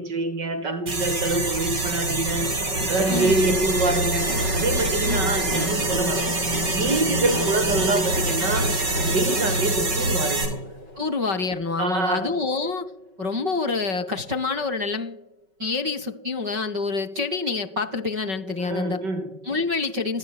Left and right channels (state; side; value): late; left; 5.3 ms